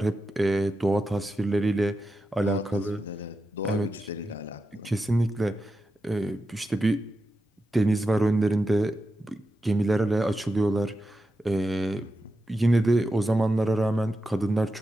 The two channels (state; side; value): normal; both; correlation 0.89